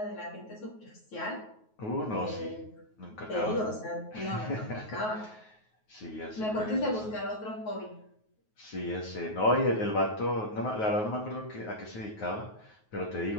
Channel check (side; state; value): right; late; 9.4 ms